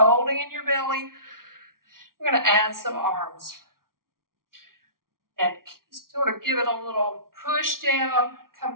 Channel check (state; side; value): late; left; 0.92 ms